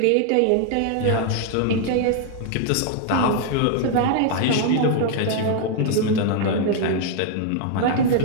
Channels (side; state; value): both; different; correlation 0.00